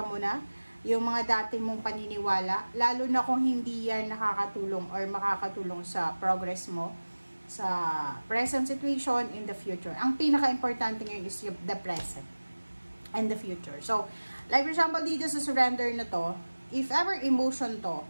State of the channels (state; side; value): inverted; both; correlation -1.00